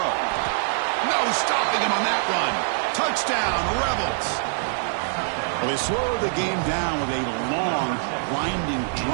No stopping him on that run. Touchdown, Rebels. Well, they slowed the game down with a long, grinding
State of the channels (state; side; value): silent; left; digital silence